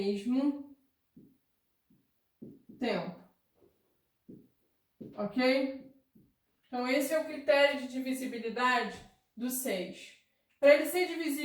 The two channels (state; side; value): identical; both; correlation 1.00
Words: tempo. Ok? Então, esse é o critério de divisibilidade do 6. Para ele ser